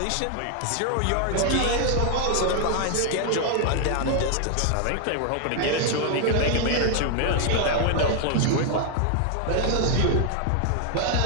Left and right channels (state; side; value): different; both; correlation 0.00